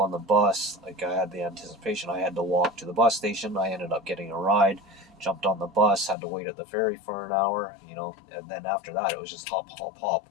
the bus, like, I had the anticipation I had to walk to the bus station. I ended up getting a ride, jumped on the bus, had to wait at the ferry for an hour, and then after that it was just hop, hop, hop,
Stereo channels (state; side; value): drops out; right; at 6.2 s